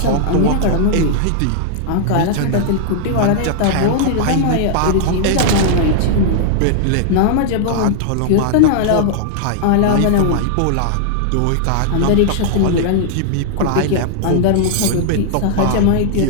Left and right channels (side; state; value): both; different; correlation -0.01